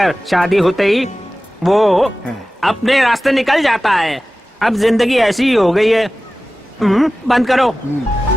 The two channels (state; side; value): normal; both; correlation 0.96